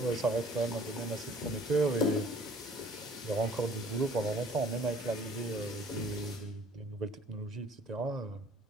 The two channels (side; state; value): both; normal; correlation 0.54